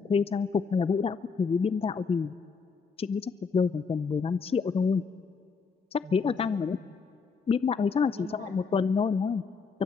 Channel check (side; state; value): right; quieter; 5.3 dB